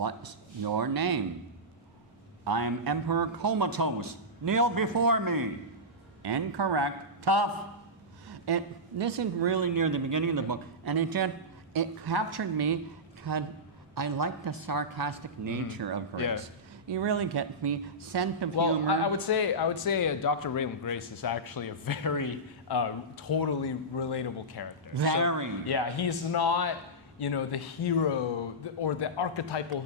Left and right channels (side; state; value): both; normal; correlation -0.14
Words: your name? I'm Emperor Comatose. Kneel before me. Incorrect. Tough. This is really near the beginning of the book, and it captured me because I like the sarcastic nature of Grace. You really get me, sense of Well, humor. I would say Dr. Raylan Grace is actually a very totally relatable character. Very. So, yeah, he's not, you know, the hero or the archetypal